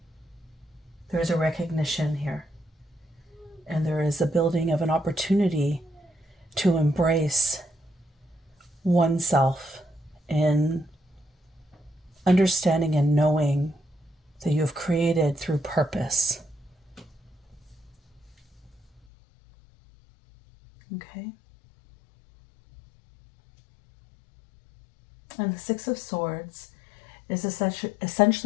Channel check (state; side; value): drops out; right; at 19.0 s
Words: There is a recognition here. And there is a building of an opportunity to embrace oneself in understanding and knowing that you have created through purpose. Okay. And the Six of Swords is